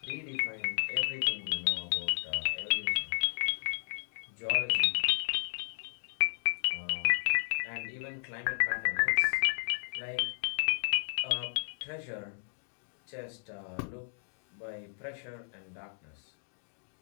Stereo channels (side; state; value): right; silent; digital silence